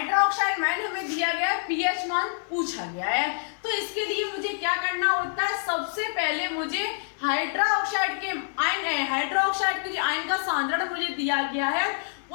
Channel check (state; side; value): silent; right; digital silence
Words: मान हमें दिया गया है, pH मान पूछा गया है, तो इसके लिए मुझे क्या करना होता है, सबसे पहले मुझे हाइड्रोक्साइड के जो आयन का सांद्रण मुझे दिया गया है